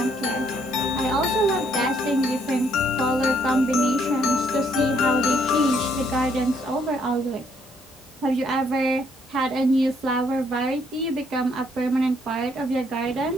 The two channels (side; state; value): both; normal; correlation 0.69